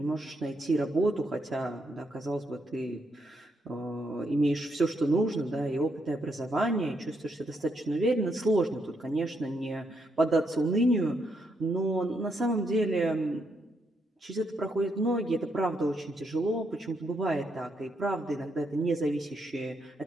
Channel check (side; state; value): both; normal; correlation 0.78